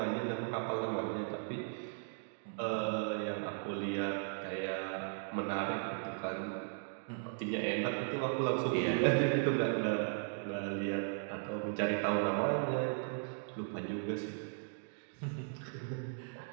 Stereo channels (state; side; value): silent; left; digital silence